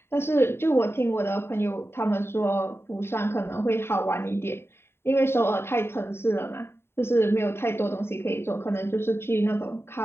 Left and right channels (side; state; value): right; late; 0.11 ms